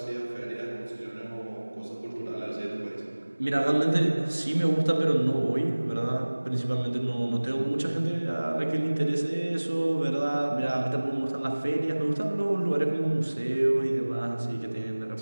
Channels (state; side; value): inverted; both; correlation -1.00